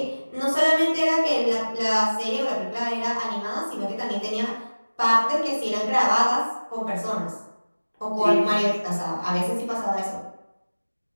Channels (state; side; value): inverted; both; correlation -1.00